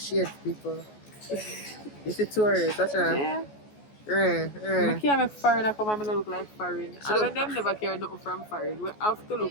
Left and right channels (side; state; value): right; late; 14 ms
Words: shades, people. This is tourist, that's right. Yeah. Yeah. I can't make foreigner come and I look like foreign. So I look- them never care nothing from foreign. We have to